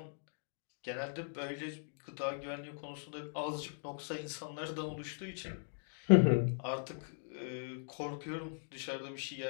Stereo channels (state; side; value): silent; right; digital silence